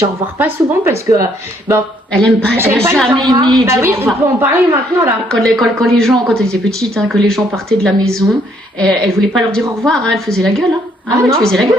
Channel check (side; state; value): both; normal; correlation 0.68